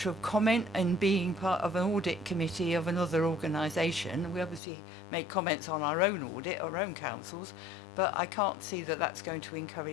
of comment in being part of an audit committee of another organisation. We obviously make comments on our own audit, our own councils, but I can't see that that's going to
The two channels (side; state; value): right; drops out; at 4.6 s